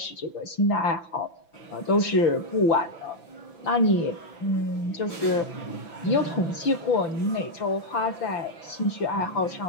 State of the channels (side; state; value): right; late; 5.9 ms